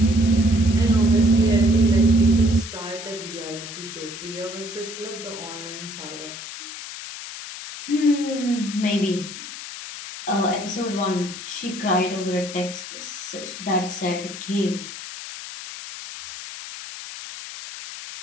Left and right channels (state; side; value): noise; left; hiss, 10 dB below the sound